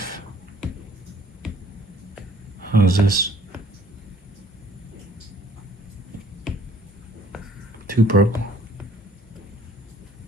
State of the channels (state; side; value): normal; both; correlation 0.57